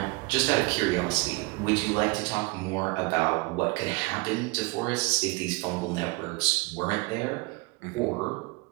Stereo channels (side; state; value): left; quieter; 25.6 dB